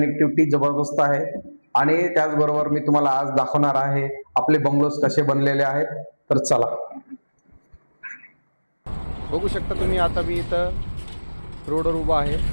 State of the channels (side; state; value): both; inverted; correlation -1.00